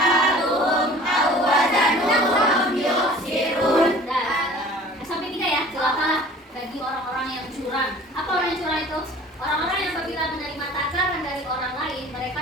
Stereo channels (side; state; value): both; normal; correlation 0.46